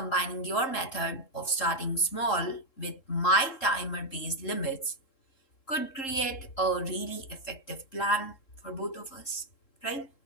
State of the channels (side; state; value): right; late; 3.7 ms